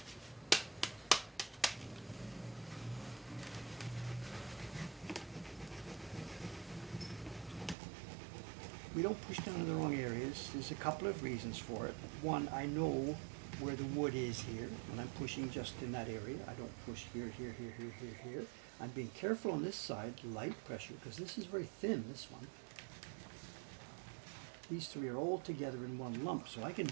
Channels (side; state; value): left; drops out; at 7.8 s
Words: We don't push down in the wrong areas. There's a couple of reasons for it. One, I know where the wood is here, and I'm pushing just in that area. I don't push here, here, here, here, here, here. I'm being careful on this side, light pressure, because this is very thin, this one. These three are all together in one lump, so I can